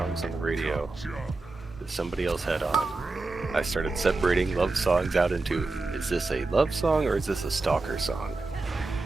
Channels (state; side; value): quieter; left; 3.5 dB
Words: on the radio that somebody else had on, I started separating love songs out into, is this a love song or is this a stalker song?